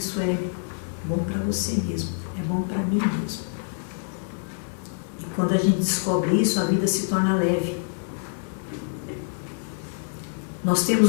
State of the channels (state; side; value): silent; right; 61 dB below the other